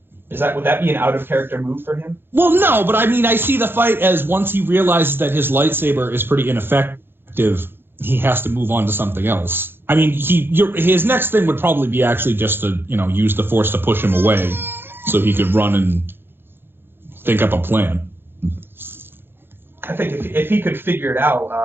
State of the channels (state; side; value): late; left; 0.10 ms